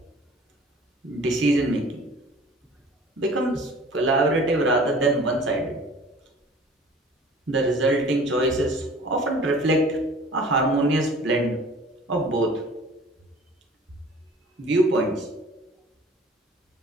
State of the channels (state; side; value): normal; both; correlation 0.47